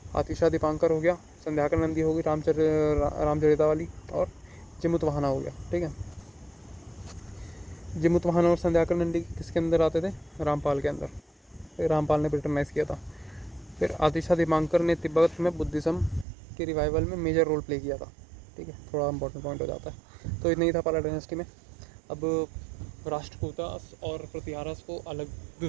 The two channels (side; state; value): left; drops out; at 16.2 s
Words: आतिशा दीपांकर हो गया, संध्याकर नंदी होगी, रामचरिता वाली, और जिमुतवाहना हो गया, ठीक है। जिमुतवाहना और संध्याकर नंदी किसके अंदर आते थे, रामपाल के अंदर, रामपाल ने ब्रिटनाइज किया था। फिर आतिशा दीपांकर ने तिब्बत में बुद्धिज़्म के रिवाइवल में मेजर रोल प्ले किया था, ठीक है, थोड़ा इंपॉर्टेंट पॉइंट हो जाता है। तो इतना ही था पाला डायनेस्टी में। अब राष्ट्रकूटा और प्रतिहारस को अलग